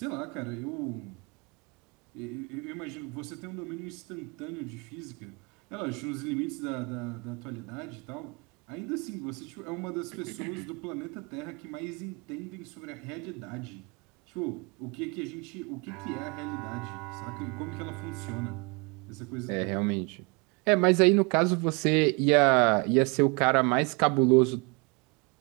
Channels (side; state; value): left; quieter; 31.0 dB